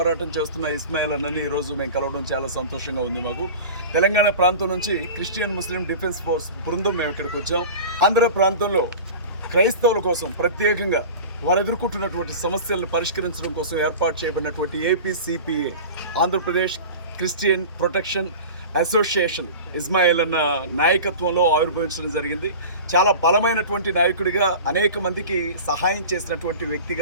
చేస్తున్న ఇస్మాయిల్ అన్నని ఈరోజు మేము కలవడం చాలా సంతోషంగా ఉంది. మాకు తెలంగాణ ప్రాంతం నుంచి క్రిస్టియన్ ముస్లిం డిఫెన్స్ ఫోర్స్ బృందం మేము ఇక్కడికి వచ్చాం. ఆంధ్ర ప్రాంతంలో క్రైస్తవుల కోసం ప్రత్యేకంగా వారు ఎదుర్కొంటున్నటువంటి సమస్యలను పరిష్కరించడం కోసం ఏర్పాటు చేయబడినటువంటి APCPA Andhra Pradesh christian protection association Ismail అన్న నాయకత్వంలో ఆవిర్భవించడం జరిగింది. చాలా బలమైనటువంటి నాయకుడిగా, అనేక మందికి సహాయం చేసినటువంటి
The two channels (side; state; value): both; inverted; correlation -0.35